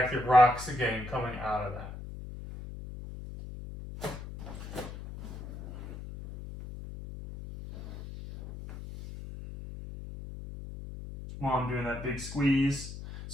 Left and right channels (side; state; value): left; noise; hum, 11 dB below the sound